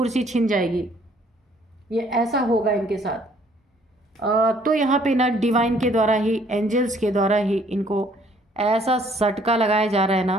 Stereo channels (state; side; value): normal; both; correlation 0.61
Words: छीन जाएगी। ये ऐसा होगा इनके साथ। तो यहाँ पे ना डिवाइन के द्वारा ही, एंजल्स के द्वारा ही इनको ऐसा सटका लगाया जा रहा है